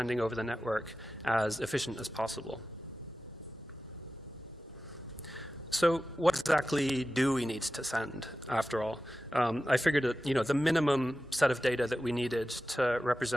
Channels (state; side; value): normal; both; correlation 0.94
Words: over the network as efficient as possible. So what exactly do we need to send, after all? I figured that, the minimum set of data that we needed to